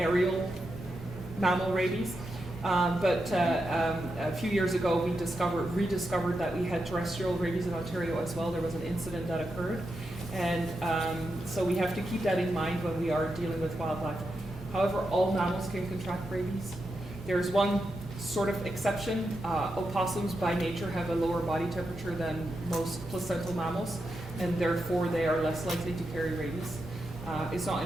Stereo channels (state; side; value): normal; both; correlation 0.86